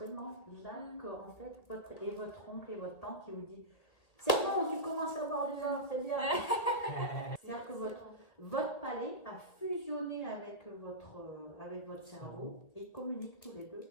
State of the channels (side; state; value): right; late; 1.9 ms